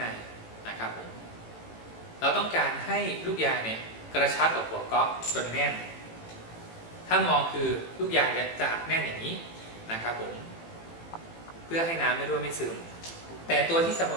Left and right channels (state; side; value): late; right; 18 ms